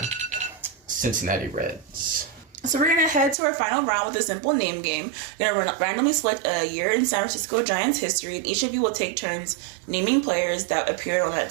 Cincinnati Reds. So we're gonna head to our final round with a simple name game. We're gonna randomly select a year in San Francisco Giants history, and each of you will take turns naming players that appeared on that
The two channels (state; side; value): drops out; left; at 3.4 s